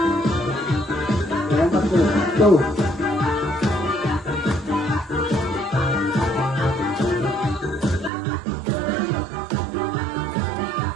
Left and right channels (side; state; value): left; drops out; at 8.1 s